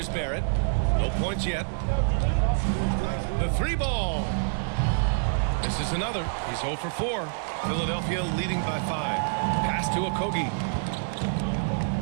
Barrett. No points yet. The 3 ball. This is another. He's 0 for 4. Philadelphia leading by 5. Pass to Okogie.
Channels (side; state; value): left; silent; digital silence